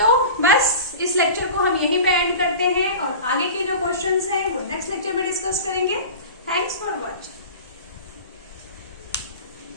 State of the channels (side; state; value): both; inverted; correlation -0.35